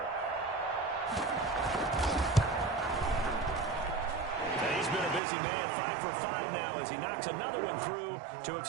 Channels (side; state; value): left; drops out; at 5.2 s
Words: And he's been a busy man, 5 for 5 now as he knocks another one through to